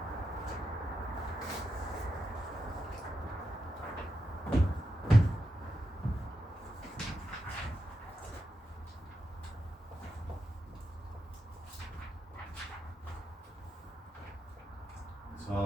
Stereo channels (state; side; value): normal; both; correlation 0.87